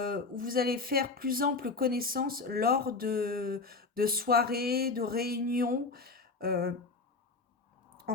faire plus ample connaissance lors de soirées, de réunions, euh,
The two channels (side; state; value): right; quieter; 3.9 dB